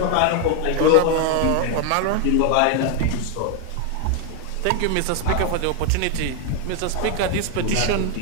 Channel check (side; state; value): both; different; correlation 0.01